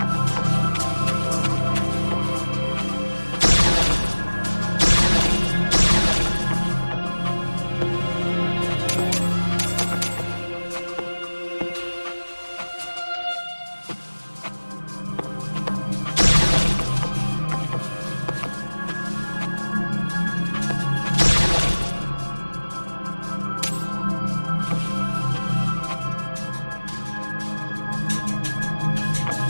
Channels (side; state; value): both; inverted; correlation -1.00